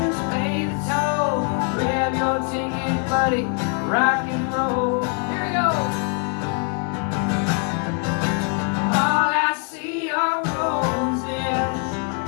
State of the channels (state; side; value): quieter; right; 38.5 dB